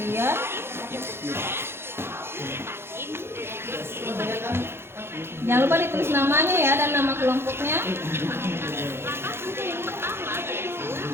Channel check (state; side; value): late; left; 0.12 ms